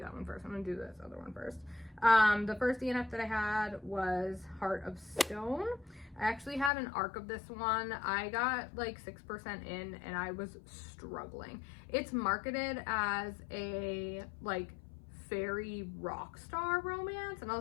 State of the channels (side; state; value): right; drops out; at 6.7 s